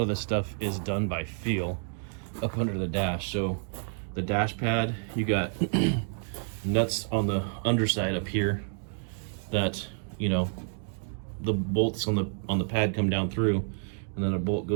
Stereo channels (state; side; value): silent; left; 58 dB below the other